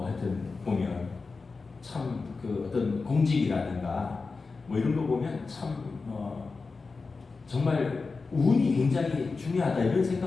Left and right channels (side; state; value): right; quieter; 4.2 dB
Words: 보면 참 그 어떤 공직이라든가 뭐 이런 거 보면 참 정말 운이 굉장히 중요하다 이런